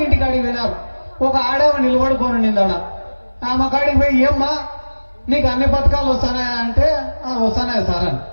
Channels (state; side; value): inverted; both; correlation -1.00